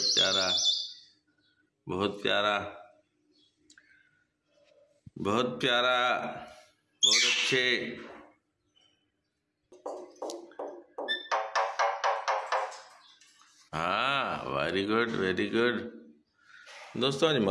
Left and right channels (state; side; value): identical; both; correlation 1.00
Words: प्यारा बहुत प्यारा बहुत प्यारा, बहुत अच्छे। हाँ वेरी गुड वेरी गुड। दोस्तों आज